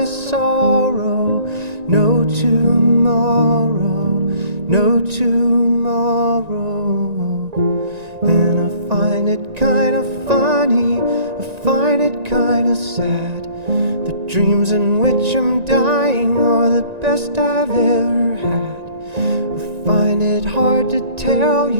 sorrow. No tomorrow, no tomorrow. And I find it kinda funny, I find it kinda sad. The dreams in which I'm dying are the best I've ever had. I find it hard to tell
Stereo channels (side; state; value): left; late; 1.9 ms